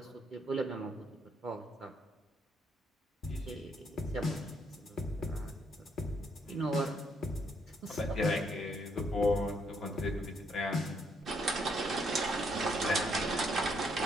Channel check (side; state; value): both; normal; correlation 0.73